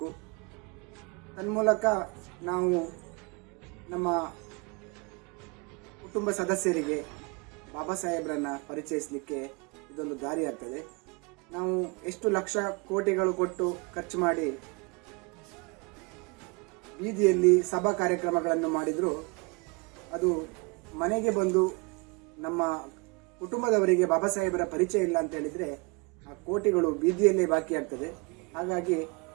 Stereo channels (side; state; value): left; quieter; 29.7 dB